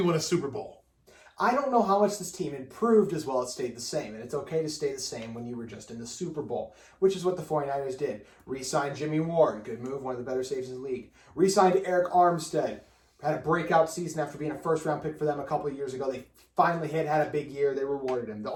win a Super Bowl? I don't know how much this team improved as well as stayed the same. And it's okay to stay the same when you were just in the Super Bowl, which is what the 49ers did. Re-signed Jimmy Ward, good move, one of the better saves in the league. Re-signed Eric Armstead, had a breakout season after being a first-round pick for them a couple of years ago. They finally had a big year. They rewarded him. The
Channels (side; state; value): both; identical; correlation 1.00